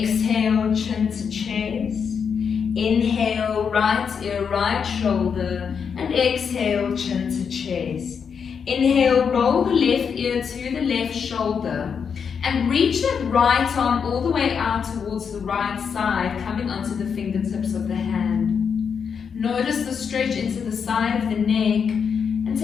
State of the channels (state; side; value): quieter; right; 6.6 dB